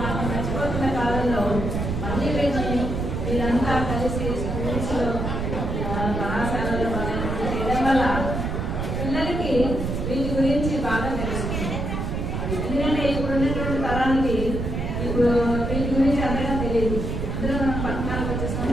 మనం మర్చిపోతున్న కాలంలో మళ్ళీ వీళ్ళంతా కలిసి స్కూల్స్లో కళాశాలలో చేయడం వల్ల పిల్లలకి వీటి గురించి బాగా తెలుస్తుంది. ఎందుకంటే ఇప్పుడు ఉన్నటువంటి తరానికి ఇప్పుడు వీటి గురించి అంతగా తెలియదు. అందులో మనం పట్టణాలకు వచ్చేసాం,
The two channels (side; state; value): right; noise; rumble, 2 dB below the sound